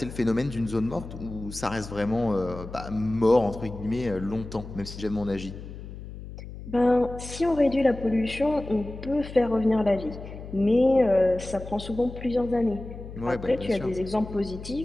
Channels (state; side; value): noise; left; hum, 12 dB below the sound